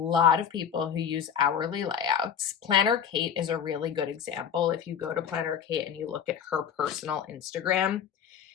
of people who use hourly layouts. Planner Kate is a really good example. If you go to Planner Kate and you look at her personal Instagram,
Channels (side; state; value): right; quieter; 8.1 dB